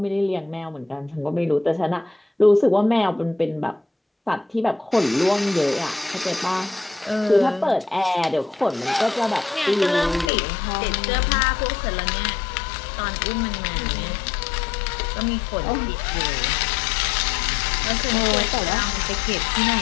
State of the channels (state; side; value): drops out; right; at 10.3 s